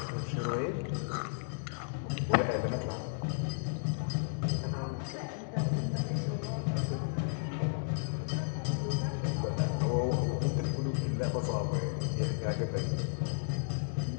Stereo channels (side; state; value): right; silent; digital silence